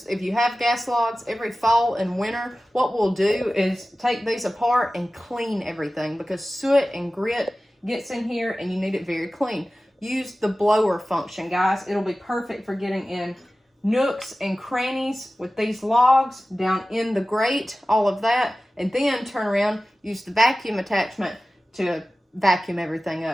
if you have gas logs, every fall and winter, what we'll do is take these apart and clean everything because soot and grit gets in here and you need it very clean. Use the blower function, guys. It'll be perfect for getting in nooks and crannies with these logs, down in the grate, all of that, and then turn around, use the vacuum attachment to vacuum everything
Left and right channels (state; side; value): normal; both; correlation 0.96